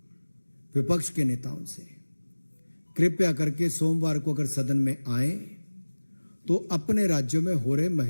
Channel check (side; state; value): both; inverted; correlation -1.00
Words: विपक्ष के नेताओं से, कृपया करके सोमवार को अगर सदन में आए तो अपने राज्यों में हो रहे